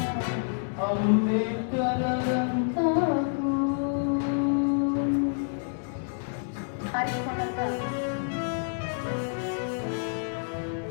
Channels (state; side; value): silent; right; digital silence